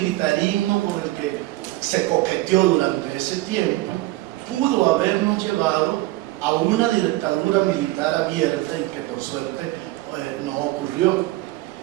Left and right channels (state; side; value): quieter; left; 18.5 dB